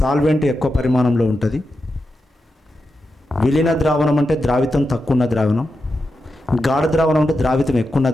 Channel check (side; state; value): both; normal; correlation 0.89